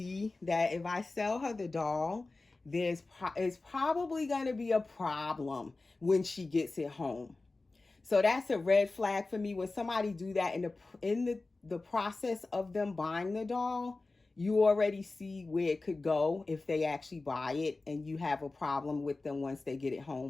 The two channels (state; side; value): quieter; right; 3.4 dB